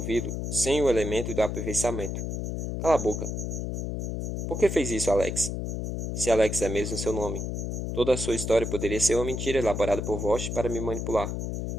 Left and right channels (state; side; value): noise; left; hum, 3 dB below the sound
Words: sem o elemento do aperfeiçoamento. Cala a boca. Por que fez isso, Alex? Se Alex é mesmo seu nome. Toda a sua história poderia ser uma mentira elaborada por Vosch para me manipular.